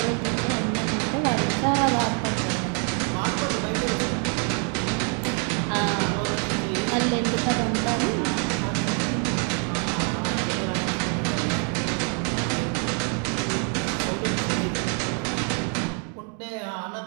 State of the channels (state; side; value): quieter; left; 39.7 dB